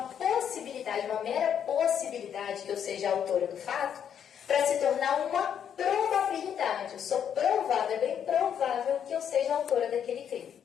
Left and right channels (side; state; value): right; quieter; 8.6 dB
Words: possibilidade, uma mera possibilidade que eu seja a autora do fato, para se tornar uma probabilidade. Eu sou provável, é bem provável que eu seja a autora daquele crime.